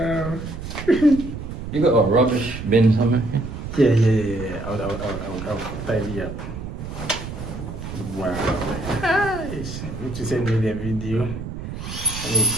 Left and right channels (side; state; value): right; noise; rumble, 8 dB below the sound